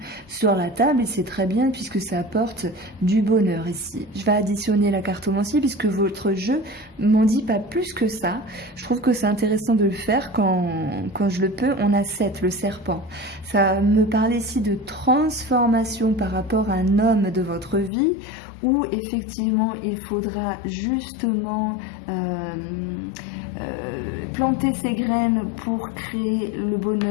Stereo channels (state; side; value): drops out; right; at 17.9 s